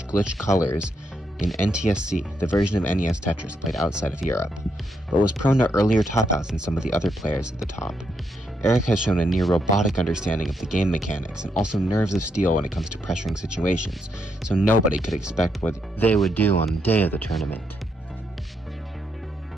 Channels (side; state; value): both; normal; correlation 0.79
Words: glitch colors in NTSC, the version of NES Tetris played outside of Europe, but was prone to earlier top-outs than some of the other players at the top. Eric has shown a near-robotic understanding of the game mechanics and also nerves of steel when it comes to pressuring situations, so nobody could expect what they would do on the day of the tournament.